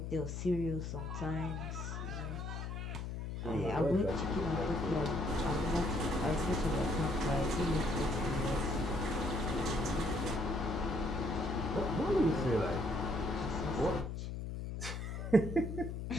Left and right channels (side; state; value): left; noise; hum, 5 dB below the sound